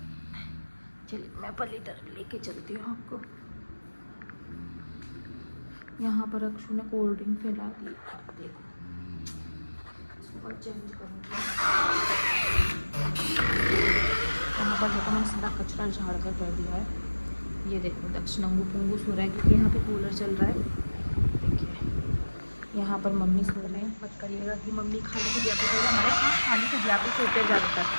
चलिए मैं पलीटर लेके चलती हूँ आपको। यहाँ पर अक्षु ने कोल्ड ड्रिंक फैला दी। देखो और चेंज करूँगी। यहाँ पर देखो मैंने सारा कचरा झाड़ कर कर दिया है। ये देखो दक्ष नंगू पुंगू सो रहा है क्योंकि यहाँ पे कूलर चल रहा है। देखिए यहाँ पर मम्मी सो रहे हैं। मत करिएगा कि मम्मी खाने के दिया पे सोएगा। हमारे यहाँ खाने के दिया पे सोते ज़्यादातर।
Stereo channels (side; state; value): both; inverted; correlation -1.00